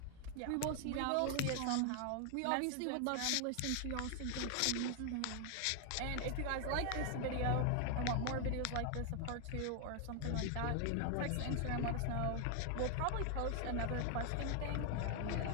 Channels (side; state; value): both; different; correlation 0.00